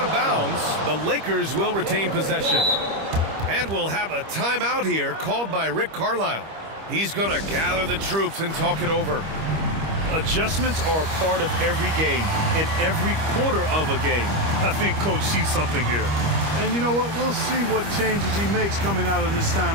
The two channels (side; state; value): left; late; 25 ms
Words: of bounds. The Lakers will retain possession. And we'll have a timeout here called by Rick Carlisle. He's going to gather the troops and talk it over. Adjustments are a part of every game and every quarter of a game. I think Coach sees something here. And you know what? We'll see what changes he makes coming out of this